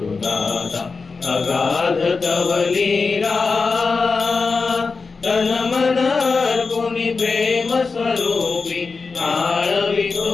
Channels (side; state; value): right; quieter; 4.5 dB